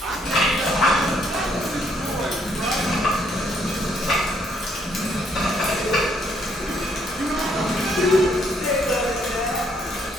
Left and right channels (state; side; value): normal; both; correlation 0.70